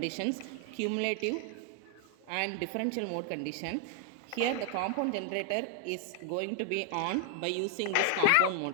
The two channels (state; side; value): different; both; correlation 0.00